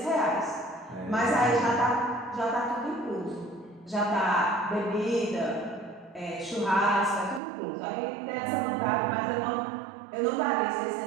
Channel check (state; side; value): drops out; left; at 7.4 s